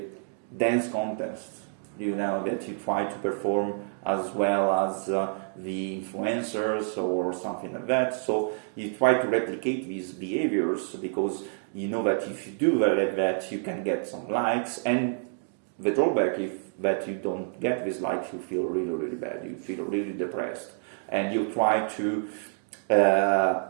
dance contests, that you try to perform as well as the influencers or something like that. So you try to replicate these behaviors, because you know that if you do that, you can get some likes. And the drawback is that you don't get these likes, you feel really, really bad. You feel really depressed, and you try to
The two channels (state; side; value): silent; left; digital silence